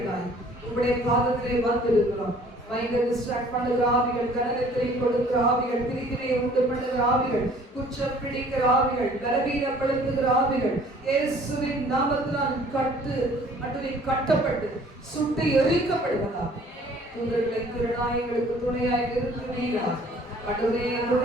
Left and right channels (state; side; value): normal; both; correlation 0.54